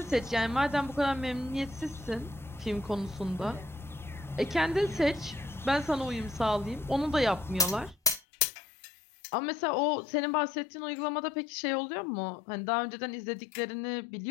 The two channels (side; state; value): right; drops out; at 8.2 s